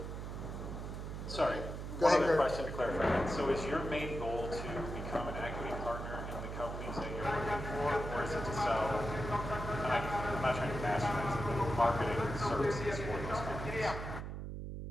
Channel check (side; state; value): right; noise; hum, 6 dB below the sound